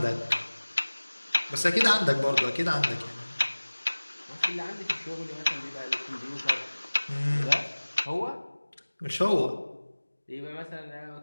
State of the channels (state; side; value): inverted; both; correlation -1.00